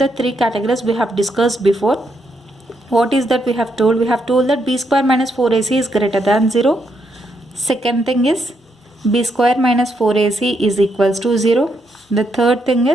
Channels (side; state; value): both; normal; correlation 0.78